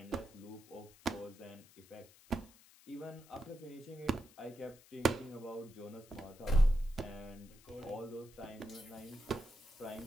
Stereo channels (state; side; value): noise; left; hiss, 23 dB below the sound